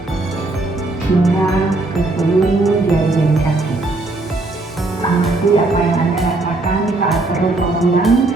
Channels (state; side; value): quieter; left; 3.0 dB